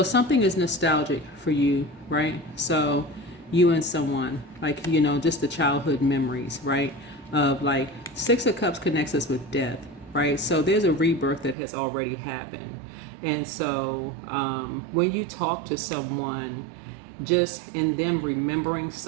something is nostalgic for you, right? So you and someone, like, you know, just the childhood memories, right? Of like, Six of Cups connects us with death, right? So there's a rebirth that has already happened. And so when you talk to someone, just in them remembering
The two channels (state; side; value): drops out; left; at 11.6 s